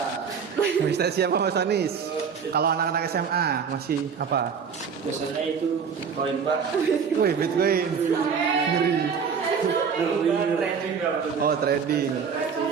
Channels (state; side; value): quieter; left; 6.4 dB